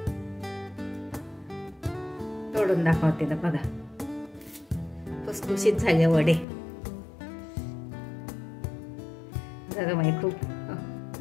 तोडून दाखवते ना, बघा खुसखुशीत झाले वडे. गरम आहे खूप.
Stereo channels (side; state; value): right; drops out; at 6.5 s